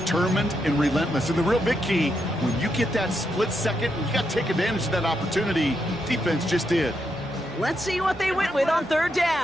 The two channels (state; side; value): normal; both; correlation 0.82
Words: and relentless. And the real big key, when you get that split second, you got to take advantage of that opportunity. Defense just did. Let's see what they went with on 3rd